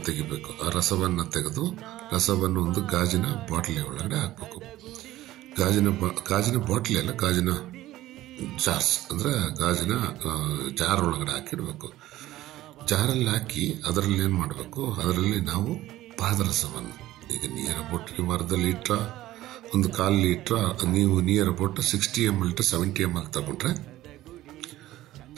ತೆಗಿಬೇಕು. ಆ ರಸವನ್ನು ತೆಗೆದು ರಸವನ್ನು ಒಂದು ಗಾಜಿನ ಬಾಟ್ಲಿ ಒಳಗಡೆ ಹಾಕಬೇಕು. ಗಾಜಿನ ಬಾಟ್ಲಿ ಅಲ್ಲ, ಗಾಜಿನ ಜಾರ್ಸ್ ಅಂದರೆ ಗಾಜಿನ ಜಾರ್ ಒಳಗಡೆ ಹಾಕಿಡಬೇಕು. ಜಾರಲ್ಲಿ ಹಾಕಿ ಅದರಲ್ಲಿ ಏನು ಮಾಡಬೇಕು, ಅದರಲ್ಲಿ ನಾವು ಪಾದರಸವನ್ನು ಈಗ ನಿಯರ್ ಅಬೌಟ್ ನೀವು ಅರ್ಧ ಲೀಟ್ರ ಒಂದು 1/4 ಲೀಟ್ರ ನೀವು near about 60 ml to 70 ml ತಗೊಂಡ್ರೆ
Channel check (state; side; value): quieter; left; 15.4 dB